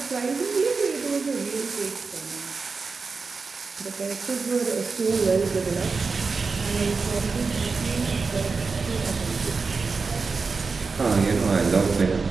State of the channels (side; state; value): left; quieter; 4.6 dB